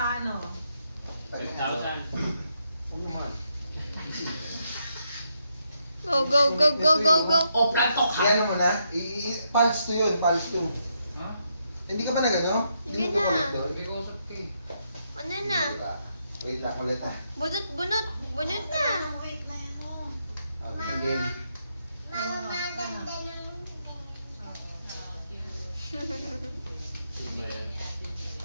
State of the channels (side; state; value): both; inverted; correlation -0.79